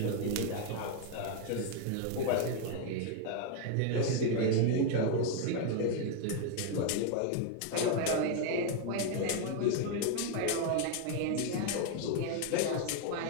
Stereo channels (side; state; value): both; different; correlation 0.01